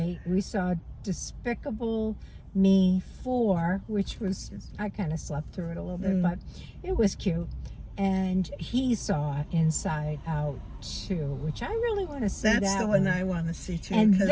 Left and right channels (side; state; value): both; identical; correlation 1.00